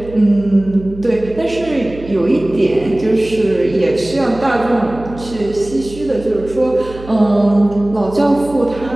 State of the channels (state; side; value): noise; right; hum, 16 dB below the sound